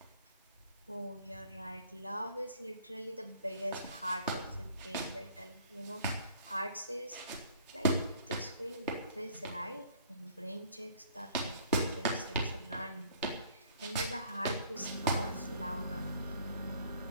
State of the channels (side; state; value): both; inverted; correlation -0.56